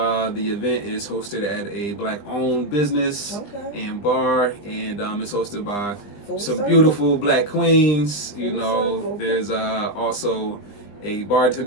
The event is hosted at a Black-owned business and bar, and it's hosted by some beautiful Black queens. There's also a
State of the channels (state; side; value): late; right; 20 ms